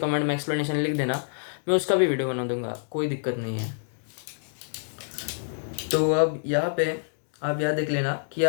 में एक्सप्लेनेशन लिख देना, मैं उसका भी वीडियो बना दूंगा, कोई दिक्कत नहीं है। तो अब यहाँ पे आप यहाँ देख लेना कि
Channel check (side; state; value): right; silent; digital silence